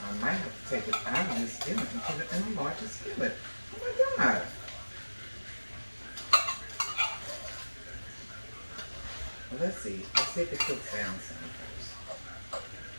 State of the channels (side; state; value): both; inverted; correlation -1.00